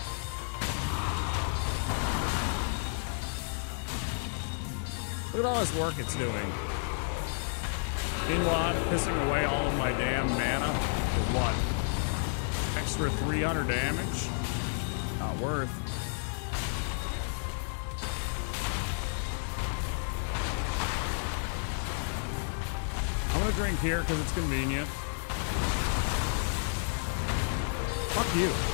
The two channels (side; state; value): right; silent; 55 dB below the other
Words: Look at all this work it's doing. Meanwhile, I'm pissing away all of my damn mana for what? Extra 300 damage? Not worth. I'm gonna drink here because it's convenient. Fuck you.